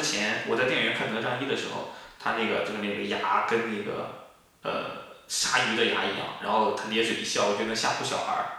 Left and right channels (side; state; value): both; identical; correlation 1.00